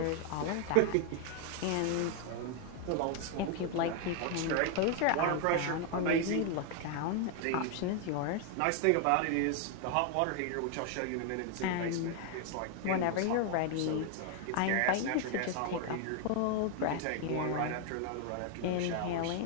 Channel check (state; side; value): different; both; correlation 0.00